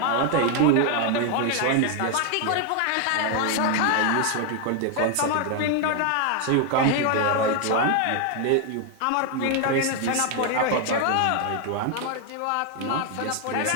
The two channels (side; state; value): both; different; correlation 0.01